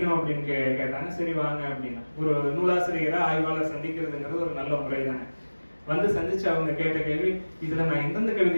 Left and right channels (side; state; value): both; inverted; correlation -1.00